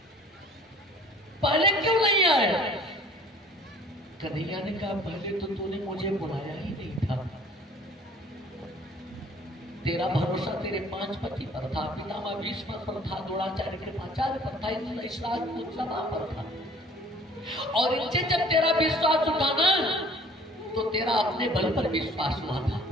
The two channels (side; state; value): both; normal; correlation 0.52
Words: पहले क्यों नहीं आए? कन्हैया ने कहा, पहले तो तूने मुझे बुलाया ही नहीं था। तेरा भरोसा तेरे 5 पति पर था, पितामह भीष्म पर था, द्रोणाचार्य कृपाचार्य पर था, इस राजपूत सभा पर था। और इनसे जब तेरा विश्वास उठा ना, तो तेरा अपने बल पर विश्वास हुआ था।